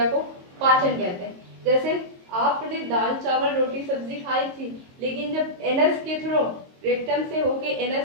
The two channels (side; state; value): left; late; 22 ms